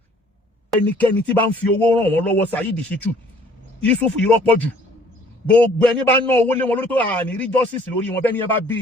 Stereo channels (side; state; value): both; normal; correlation 0.57